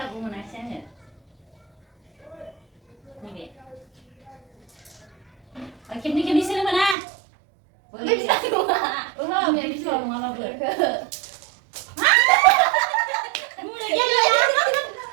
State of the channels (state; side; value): drops out; left; at 7.0 s